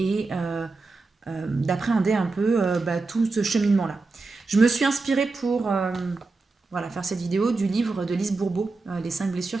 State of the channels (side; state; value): left; quieter; 3.8 dB